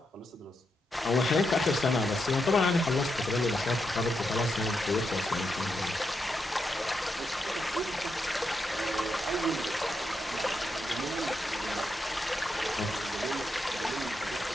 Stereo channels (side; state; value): both; normal; correlation 0.84